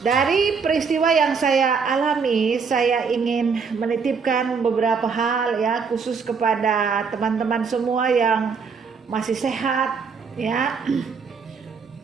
dari peristiwa yang saya alami, saya ingin menitipkan beberapa hal, ya, khusus kepada teman-teman semua yang masih sehat, ya.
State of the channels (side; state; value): left; quieter; 5.5 dB